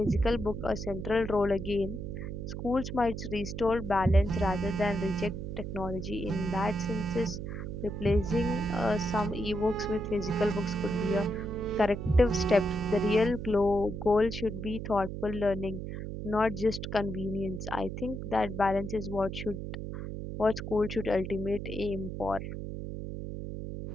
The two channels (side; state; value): right; noise; hum, 6 dB below the sound